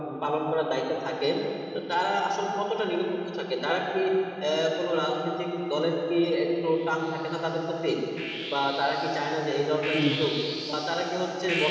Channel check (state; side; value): identical; both; correlation 1.00